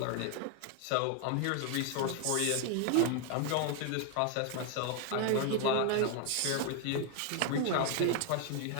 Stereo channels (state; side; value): different; both; correlation 0.01